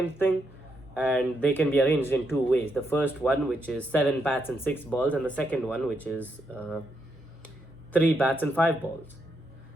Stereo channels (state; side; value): normal; both; correlation 0.80